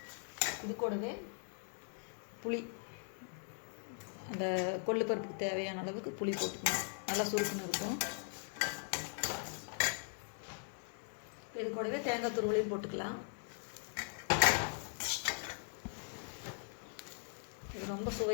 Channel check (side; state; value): right; silent; 51 dB below the other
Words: இது கூடவே புளி, அந்த கொள்ளு பருப்புக்கு தேவையான அளவுக்கு புளி போட்டுக்கணும். நல்லா சுருக்கணும் இருக்கும். இது கூடவே தேங்காய் துருவலையும் போட்டுக்கலாம். இது ரொம்ப